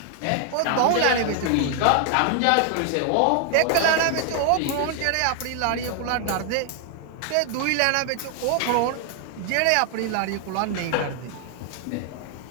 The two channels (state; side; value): different; both; correlation 0.00